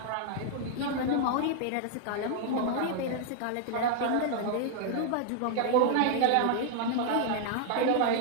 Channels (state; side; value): different; both; correlation 0.00